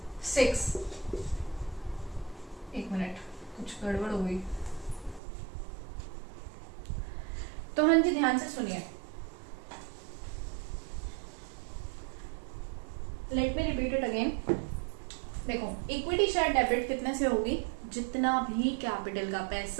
6, एक मिनट कुछ गड़बड़ हो गई, तो हाँ जी ध्यान से सुनिए, let me repeat it again. देखो इक्विटी शेयर डेबिट कितने से होगी? जितना भी कैपिटल का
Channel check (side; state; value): left; drops out; at 5.2 s